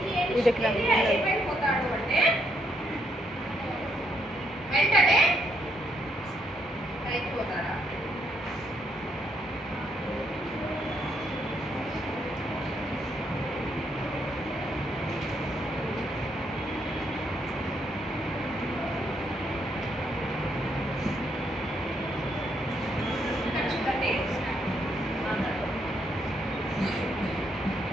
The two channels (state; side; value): normal; both; correlation 0.74